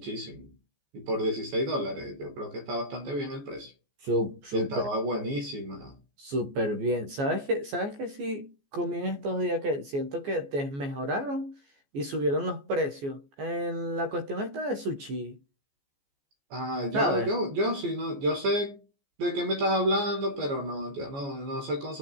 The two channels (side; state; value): left; late; 14 ms